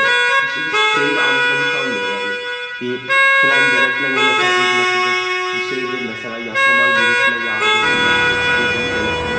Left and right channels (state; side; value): identical; both; correlation 1.00